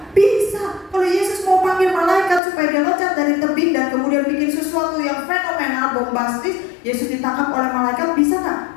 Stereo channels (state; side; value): drops out; right; at 2.4 s